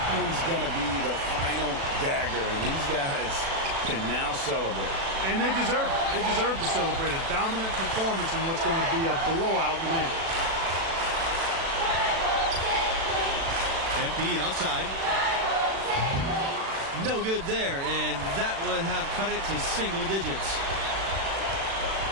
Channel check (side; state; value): left; late; 36 ms